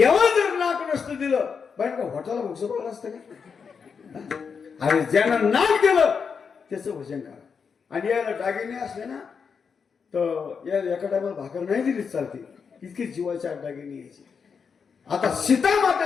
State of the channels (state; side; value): quieter; right; 6.0 dB